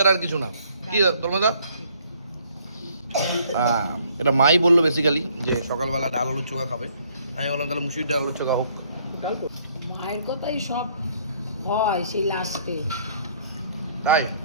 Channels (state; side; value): inverted; both; correlation -0.64